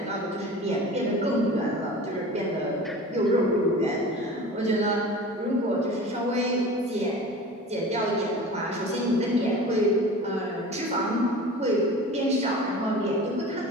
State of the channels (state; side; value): normal; both; correlation 0.37